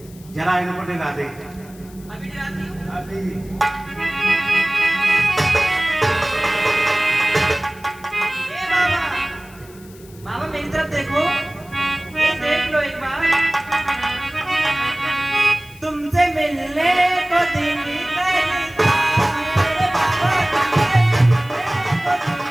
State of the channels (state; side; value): noise; left; hiss, 24 dB below the sound